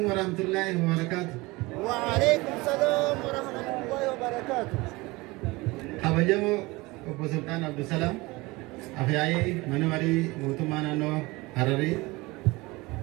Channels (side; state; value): left; quieter; 22.6 dB